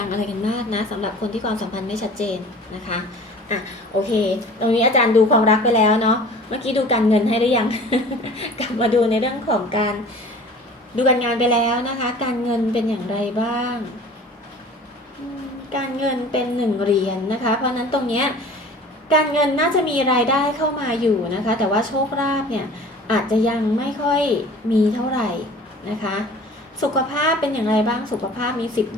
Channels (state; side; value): normal; both; correlation 0.44